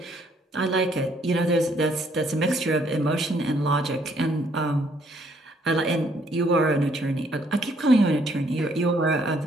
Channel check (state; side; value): normal; both; correlation 0.67